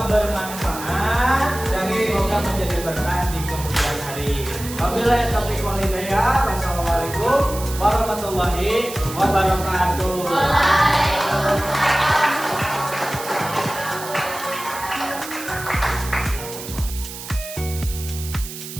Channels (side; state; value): right; noise; hiss, 11 dB below the sound